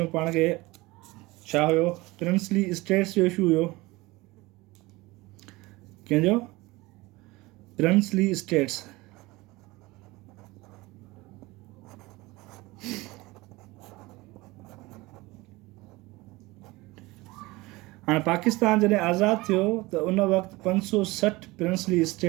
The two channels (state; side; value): quieter; left; 21.5 dB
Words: पाण खे छा हुयो, प्रिंसली स्टेट्स जो इशू हुयो। कंहिंजो? Princely states. हाणे पाकिस्तान जॾहिं आज़ादु थियो त उन वक़्तु 560 प्रिंसली